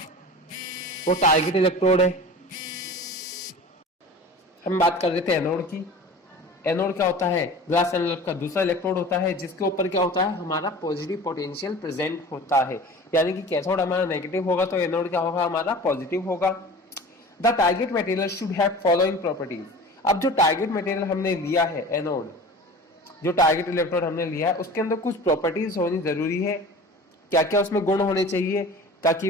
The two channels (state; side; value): normal; both; correlation 0.39